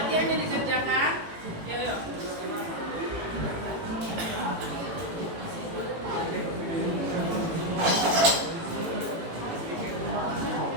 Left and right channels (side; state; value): left; late; 18 ms